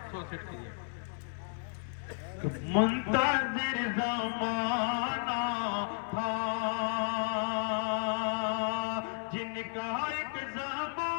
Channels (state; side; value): silent; right; 56 dB below the other